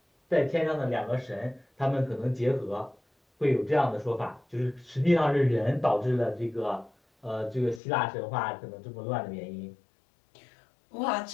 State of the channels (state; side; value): drops out; right; at 7.8 s